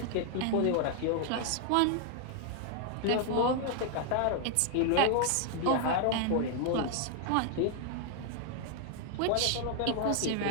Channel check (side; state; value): both; different; correlation 0.00